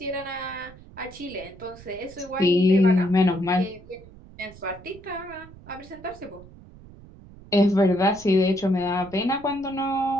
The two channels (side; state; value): right; noise; rumble, 20 dB below the sound